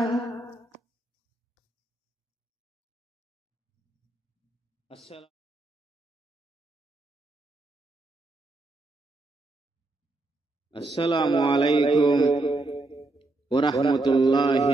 আসসালামু আলাইকুম ওয়া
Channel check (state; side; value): quieter; left; 3.0 dB